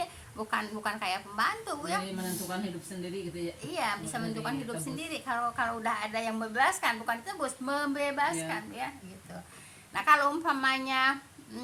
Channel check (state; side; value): identical; both; correlation 1.00